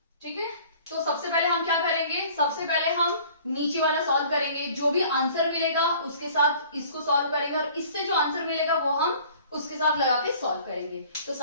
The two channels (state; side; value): inverted; both; correlation -0.50